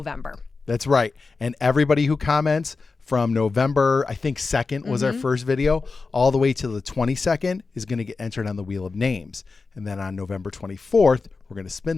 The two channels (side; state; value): right; quieter; 4.2 dB